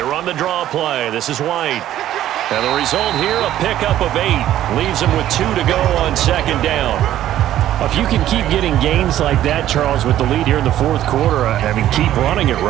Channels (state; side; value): quieter; left; 12.6 dB